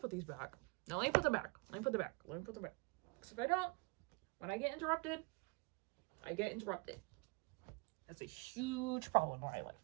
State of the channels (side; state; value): left; quieter; 29.8 dB